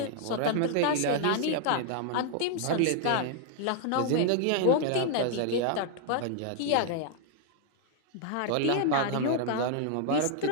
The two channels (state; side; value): different; both; correlation 0.00